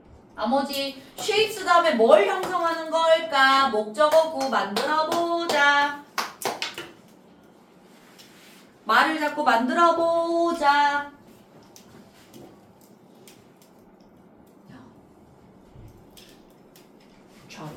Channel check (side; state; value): both; identical; correlation 1.00